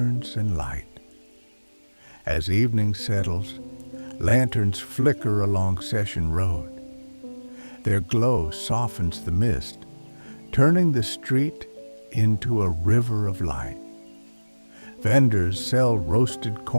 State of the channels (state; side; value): inverted; both; correlation -1.00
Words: and light. As evening settles, lanterns flicker along Session Road. Their glow softens the mist, turning the street into a river of light. Vendors sell roasted